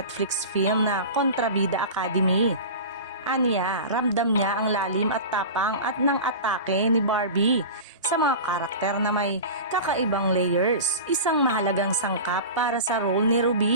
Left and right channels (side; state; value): both; inverted; correlation -0.31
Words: film na Kontrabida Academy. Aniya, ramdam niya ang lalim at tapang at ng atake ni Barbie sa mga karakter na may kakaibang layers, isang mahalagang sangkap para sa role ni